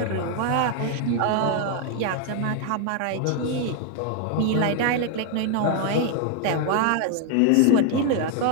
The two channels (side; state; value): both; different; correlation 0.01